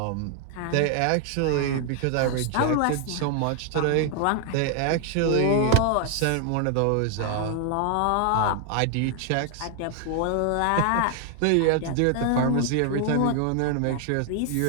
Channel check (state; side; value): different; both; correlation 0.00